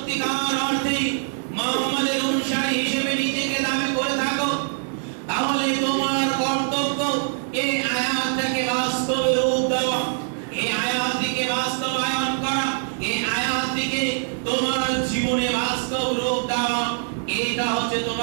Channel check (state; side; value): silent; left; 60 dB below the other